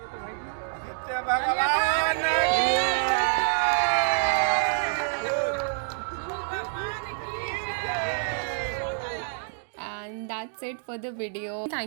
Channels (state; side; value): silent; left; digital silence